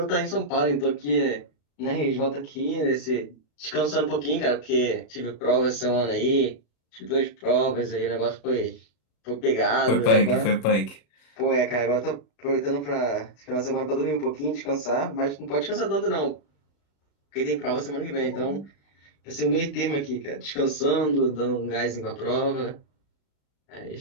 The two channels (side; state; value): right; late; 35 ms